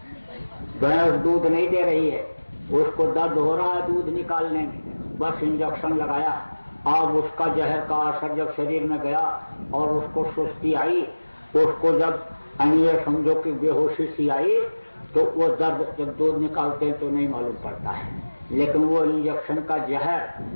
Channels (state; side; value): inverted; both; correlation -1.00